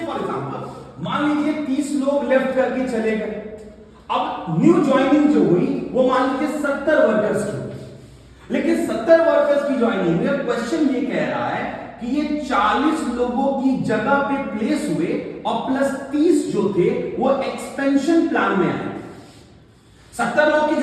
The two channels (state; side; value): identical; both; correlation 1.00